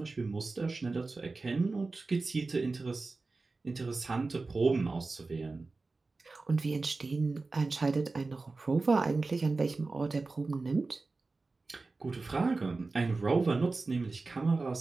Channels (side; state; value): left; quieter; 3.7 dB